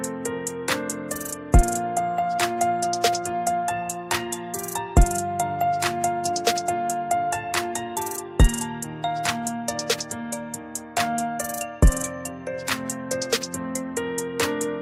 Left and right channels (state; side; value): identical; both; correlation 1.00